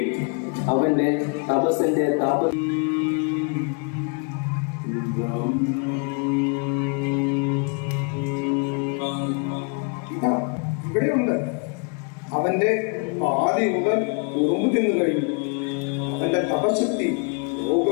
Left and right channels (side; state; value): right; quieter; 37.6 dB